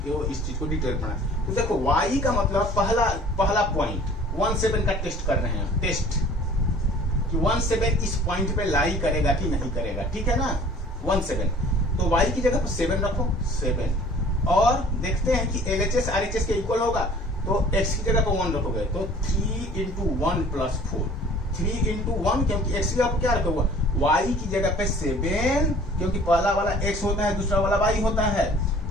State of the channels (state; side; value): normal; both; correlation 0.50